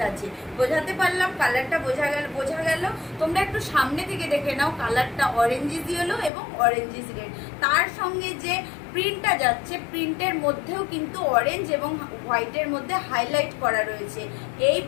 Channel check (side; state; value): right; drops out; at 6.3 s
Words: আছে। বোঝাতে পারলাম? কালারটা বোঝা গেল? তোমরা একটু সামনে থেকে দেখে নাও, কালারটা অরেঞ্জিস ইয়েলো এবং অরেঞ্জিস রেড। তার সঙ্গে যে প্রিন্টটা যাচ্ছে, প্রিন্টের মধ্যেও কিন্তু অরেঞ্জ এবং হোয়াইটের মধ্যে হাইলাইট করা রয়েছে। এই